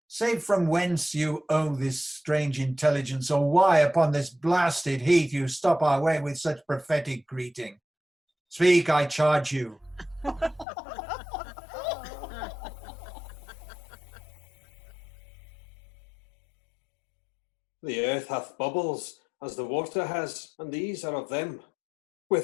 Say from whence you owe this strange intelligence, or why upon this blasted heath you stop our way with such prophetic greeting. Speak, I charge you. The earth hath bubbles, as the water has, and these are of them.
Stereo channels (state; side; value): drops out; right; at 10.7 s